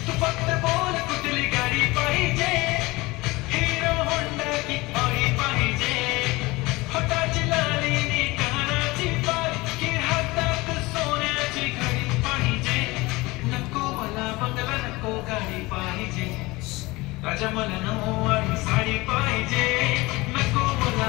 तू फक्त बोल कुठली गाडी पाहिजे, हिरो होंडा की ऑडी पाहिजे. होटाची लाली नी कानाची बाल की हातात सोन्याची घडी पाहिजे. नको मला बंगला नको गाडी पाहिजे, राजा मला नऊवारी साडी पाहिजे. नको मला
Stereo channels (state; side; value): quieter; right; 21.9 dB